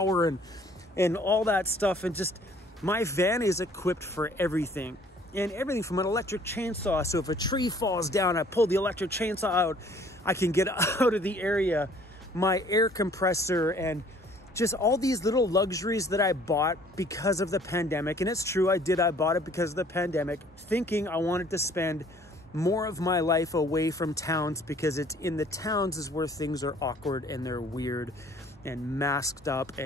and all that stuff. And just, my van is equipped for everything. And everything from an electric chainsaw. So if a tree falls down, I pull the electric chainsaw out, I can get out of the area my air compressor and just all these little luxuries that I bought because of the pandemic. And it's true, I bought it because of the pandemic, thinking I wanted to spend more of my life away from towns, because it's in the towns is where things are awkward and they're weird and masked up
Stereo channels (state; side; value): normal; both; correlation 0.57